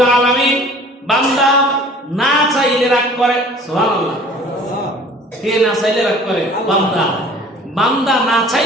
আলামিন বান্দা না চাইলে রাগ করে। সুবহানাল্লাহ। কে না চাইলে রাগ করে? বান্দা। বান্দা না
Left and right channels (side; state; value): both; normal; correlation 0.48